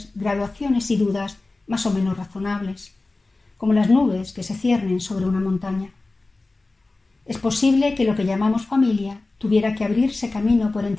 graduaciones y dudas más o menos razonables, como las nubes que se ciernen sobre una montaña. Es posible que lo que llamamos familia tuviera que abrirse camino por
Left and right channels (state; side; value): quieter; right; 3.3 dB